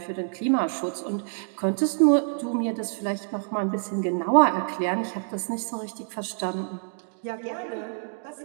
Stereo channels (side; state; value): left; silent; digital silence